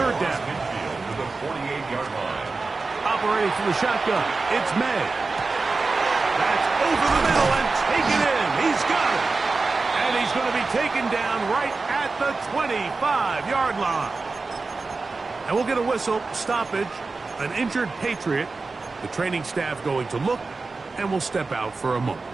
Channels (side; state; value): left; quieter; 3.9 dB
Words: down. To the 48-yard line. Operating from the shotgun, it's May. That's over the middle and taken in. He's got it. And he's going to be taken down right at the 25-yard line. And we'll get a whistle, stoppage, an injured Patriot. The training staff going to look, and we'll step out for a moment.